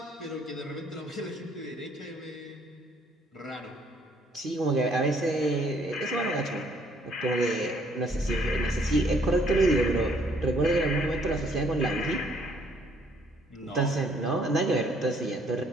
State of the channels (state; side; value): normal; both; correlation 0.65